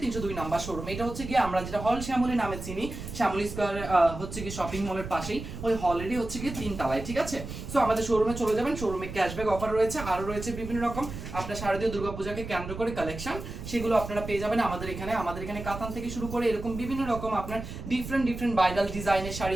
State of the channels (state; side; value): noise; right; rumble, 9 dB below the sound